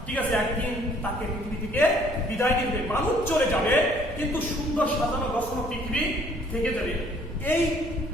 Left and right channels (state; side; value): normal; both; correlation 0.60